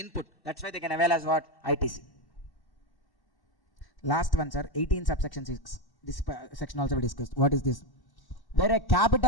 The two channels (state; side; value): late; right; 1.1 ms